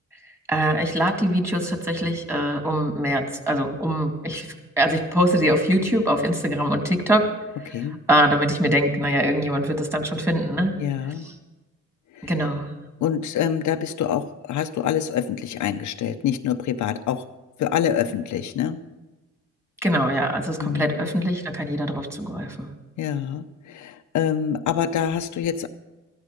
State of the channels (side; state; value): both; normal; correlation 0.45